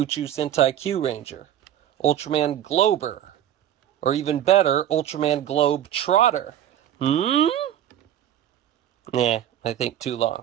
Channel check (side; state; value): left; quieter; 11.2 dB